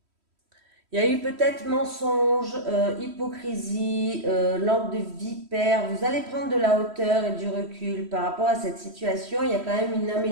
Il y a eu peut-être mensonge, hypocrisie, langue de vipère. Vous allez prendre de la hauteur et du recul par rapport à cette situation. Il y a quand même une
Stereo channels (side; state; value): left; late; 3.1 ms